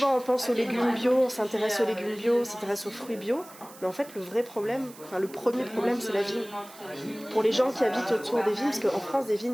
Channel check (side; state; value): right; noise; hiss, 20 dB below the sound